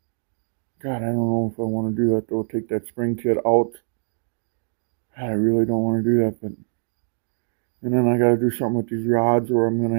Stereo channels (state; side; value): silent; left; digital silence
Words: God, I don't know if I want to do that though, take that spring kit out. I really don't want to do that, but, and then I got to do something with these rods, or I'm going